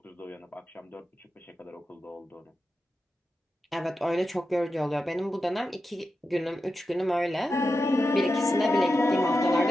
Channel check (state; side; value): normal; both; correlation 0.90